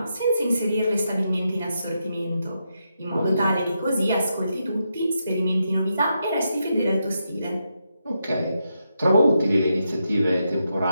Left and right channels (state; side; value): inverted; both; correlation -0.84